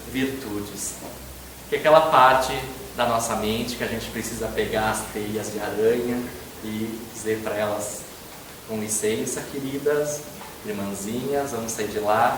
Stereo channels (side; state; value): both; identical; correlation 1.00